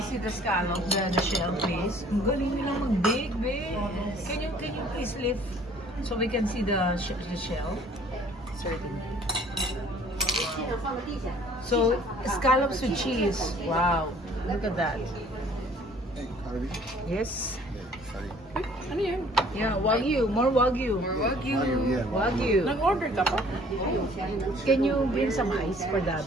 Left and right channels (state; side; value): normal; both; correlation 0.55